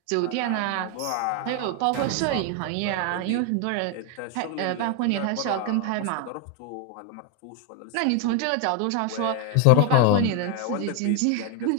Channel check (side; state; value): both; different; correlation 0.01